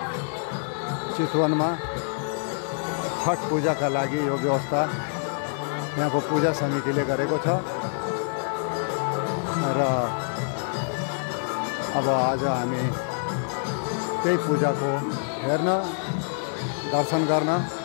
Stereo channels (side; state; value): right; silent; digital silence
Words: चितवनमा छठ पूजाका लागि यो व्यवस्था यहाँको पूजा समितिले गरेको छ र अब आज हामी त्यही पूजाको हेर्न दर्शन गर्न